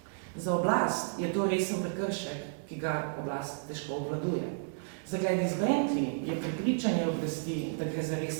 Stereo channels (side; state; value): left; silent; digital silence